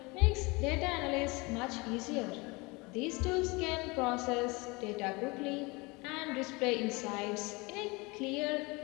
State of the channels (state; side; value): quieter; right; 25.9 dB